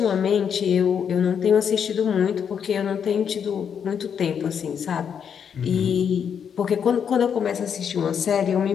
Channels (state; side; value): quieter; right; 7.6 dB